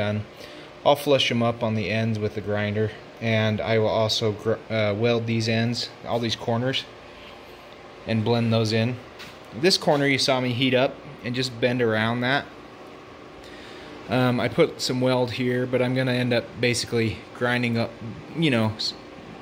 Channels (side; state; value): both; identical; correlation 1.00